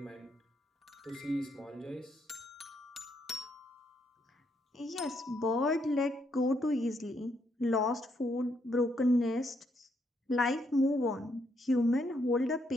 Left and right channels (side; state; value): both; normal; correlation 0.75